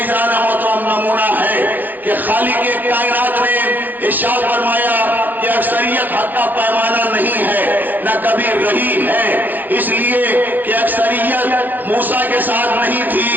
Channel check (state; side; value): late; left; 0.086 ms